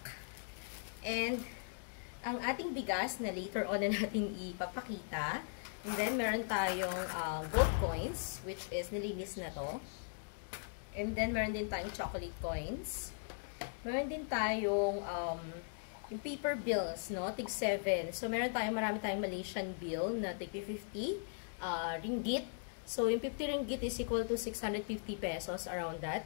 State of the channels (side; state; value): right; silent; digital silence